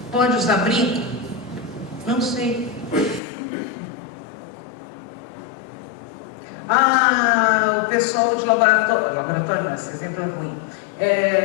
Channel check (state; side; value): drops out; right; at 3.2 s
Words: Pode usar brinco? Não sei. O pessoal de laboratório não, esse exemplo é ruim.